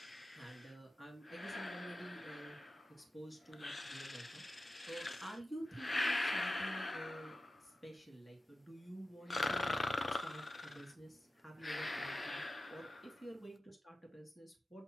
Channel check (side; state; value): both; normal; correlation 0.93